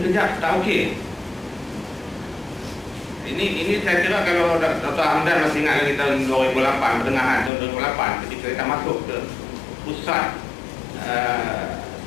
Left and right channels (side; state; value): right; drops out; at 7.5 s